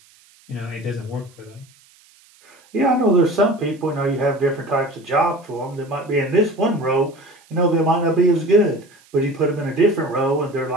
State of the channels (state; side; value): noise; right; hiss, 29 dB below the sound